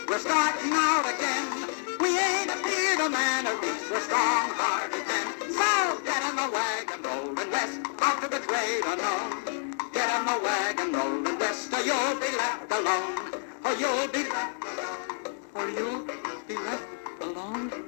we're starting out again. We ain't afeard of man, at least we're strong-hearted men. So get in the wagon, rolling west, out to the great unknown. Get in the wagon, rolling west, or you'll be left alone. Or you'll be left alone. Or you'll be left alone.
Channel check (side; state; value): right; silent; 59 dB below the other